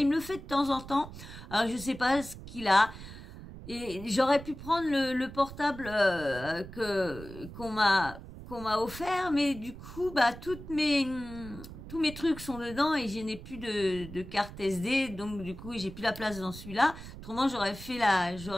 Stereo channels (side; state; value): right; noise; rumble, 14 dB below the sound